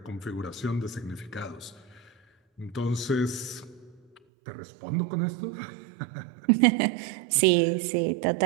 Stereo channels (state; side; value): drops out; left; at 4.2 s